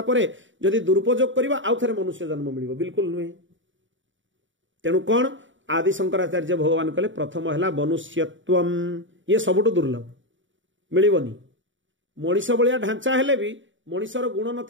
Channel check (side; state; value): left; late; 0.55 ms